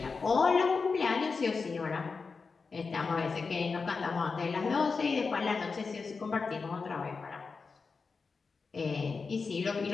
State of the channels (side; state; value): right; quieter; 4.7 dB